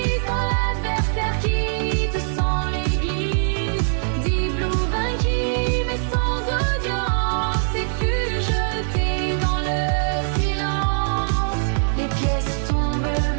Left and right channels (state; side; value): silent; left; 64 dB below the other